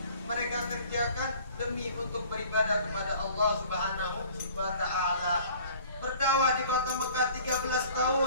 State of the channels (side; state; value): both; inverted; correlation -0.50